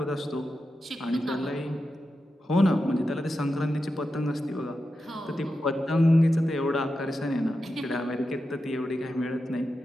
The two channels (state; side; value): normal; both; correlation 0.90